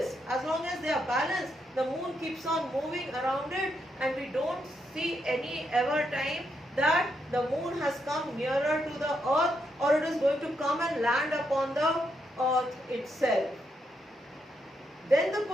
as long as they are balanced, the moon keeps on moving around it, and we don't see any ever time that the moon has come nearer to the earth or it is going to come and land upon the earth itself. Then the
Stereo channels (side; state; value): both; normal; correlation 0.79